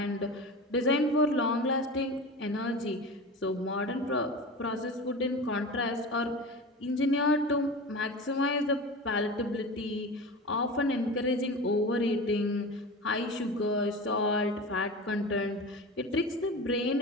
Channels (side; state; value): both; normal; correlation 0.31